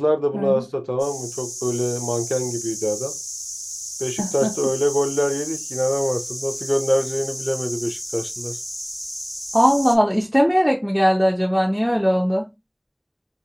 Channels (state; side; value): identical; both; correlation 1.00